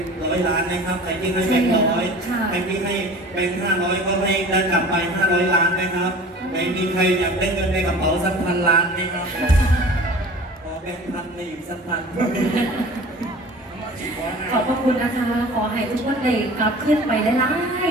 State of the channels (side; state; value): both; normal; correlation 0.41